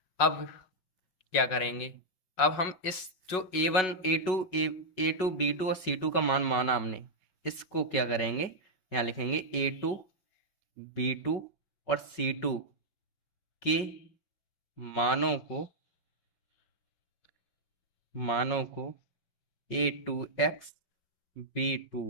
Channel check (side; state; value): right; late; 5.4 ms